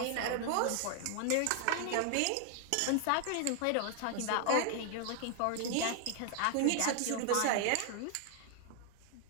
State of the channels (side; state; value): both; different; correlation 0.00